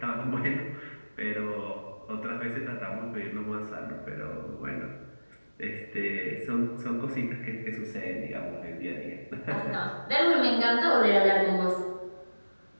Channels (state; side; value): inverted; both; correlation -1.00